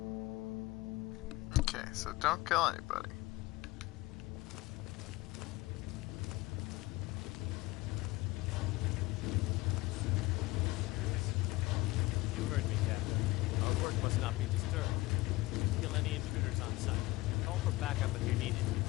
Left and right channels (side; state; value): right; quieter; 20.5 dB